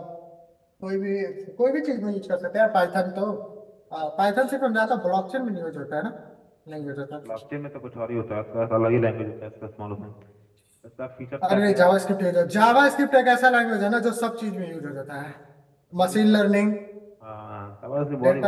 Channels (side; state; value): both; identical; correlation 1.00